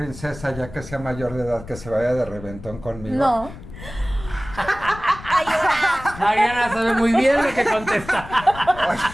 ya que sea mayor de edad que se vaya de reventón conmigo? No. Mariana sabe muy bien lo que contesta.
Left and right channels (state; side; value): noise; left; rumble, 15 dB below the sound